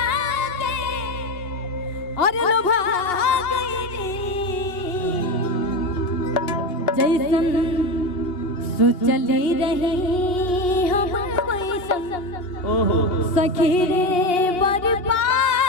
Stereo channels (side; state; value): right; late; 2.8 ms